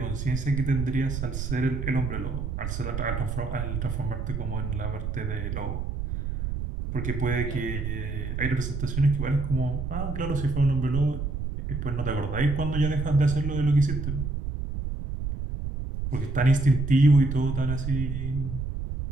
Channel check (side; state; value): right; noise; rumble, 4 dB below the sound